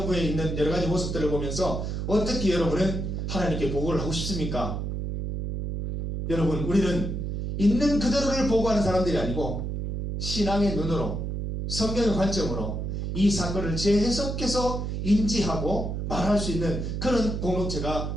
있는 여러 가지 모습들을 보면서 어떻게 여러분은 하나님께 보고를 하고 싶습니까? 여러분, 우리는 있는 그대로를 보고하는 사람들이 아니고 신앙의 눈으로, 성경의 관점으로 이 사건을 재해석해서 인지하고 말할 수 있는 그런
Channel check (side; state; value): right; noise; hum, 3 dB below the sound